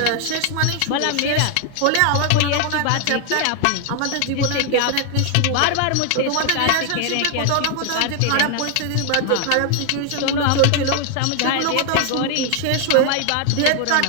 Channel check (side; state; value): both; different; correlation 0.00